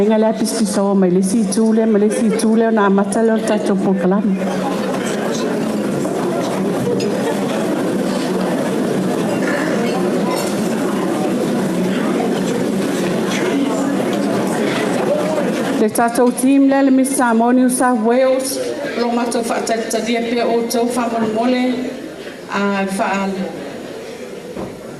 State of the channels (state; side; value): identical; both; correlation 1.00